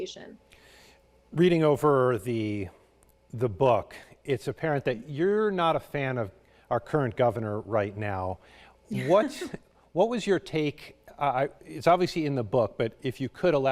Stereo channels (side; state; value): both; identical; correlation 1.00